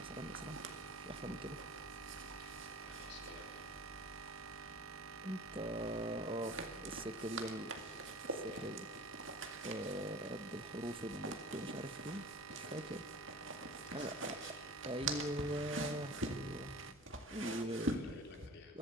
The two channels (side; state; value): both; normal; correlation 0.40